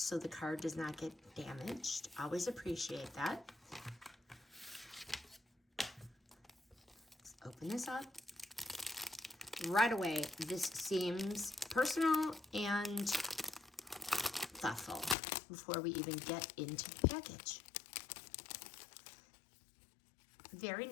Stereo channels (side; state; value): right; drops out; at 15.2 s